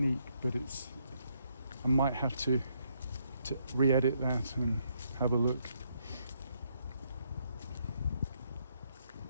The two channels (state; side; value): inverted; both; correlation -0.74